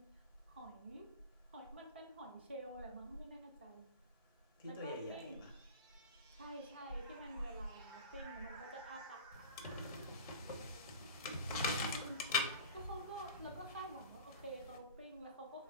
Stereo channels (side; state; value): both; inverted; correlation -0.32